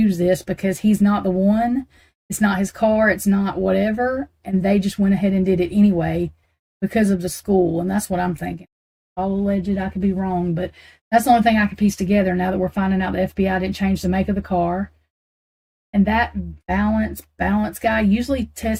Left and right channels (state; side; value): identical; both; correlation 1.00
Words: this because he's not the one. It's not his car. It's not whatever. And they just went ahead and did it anyway because of the school. And that's what I'm thinking. All alleged, I could be wrong, but that's the only thing I could piece together now that we're finding out the FBI didn't change the make of the car. And that balance guy usually